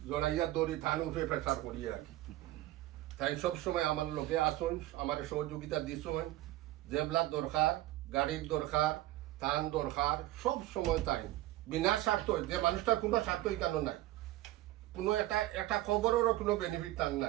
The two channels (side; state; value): left; quieter; 16.2 dB